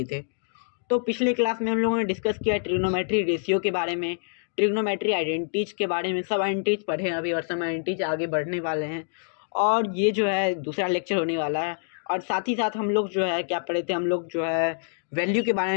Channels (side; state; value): right; silent; digital silence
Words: थे। तो पिछले क्लास में हम लोगों ने डिस्कस किया ट्रिग्नोमेट्री रेशियो के बारे में, ट्रिग्नोमेट्री आइडेंटिटीज के बारे में। सब आइडेंटिटीज पढ़े हैं अभी और सब आइडेंटिटीज आगे बढ़ने वाले हैं और ये जो है दूसरा लेक्चर होने वाला है। और साथ ही साथ हम लोग जो है क्या पढ़े थे, हम लोग जो है वैल्यू के बारे